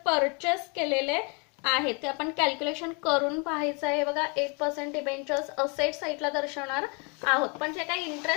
परचेस केलेले आहे. ते आपण कॅल्क्युलेशन करून पाहायचं आहे. बघा 8% डिबेंचर्स असेट साईडला दर्शवणार आहोत, पण जे काही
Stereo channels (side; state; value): right; quieter; 33.4 dB